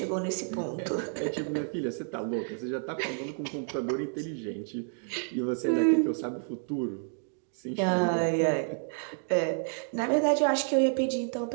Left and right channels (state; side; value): silent; left; 58 dB below the other